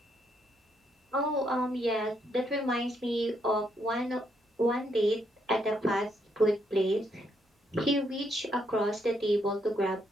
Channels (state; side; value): normal; both; correlation 0.75